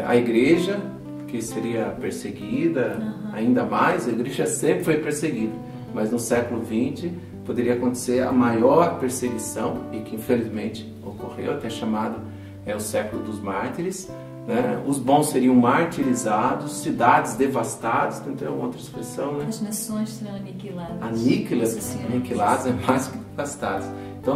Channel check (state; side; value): identical; both; correlation 1.00